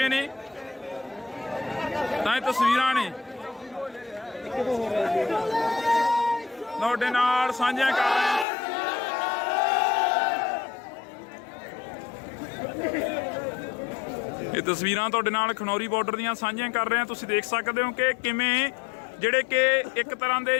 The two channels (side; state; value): right; drops out; at 8.5 s